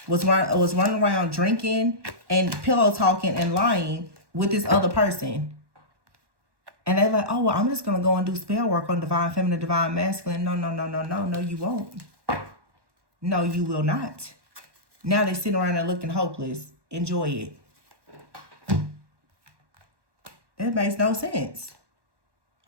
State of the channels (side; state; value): left; late; 1.1 ms